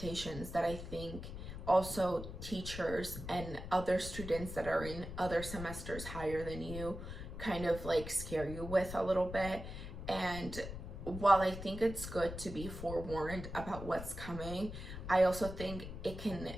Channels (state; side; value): noise; left; rumble, 9 dB below the sound